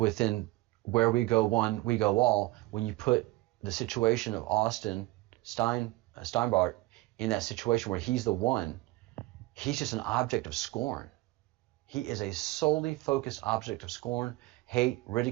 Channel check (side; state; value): left; quieter; 19.7 dB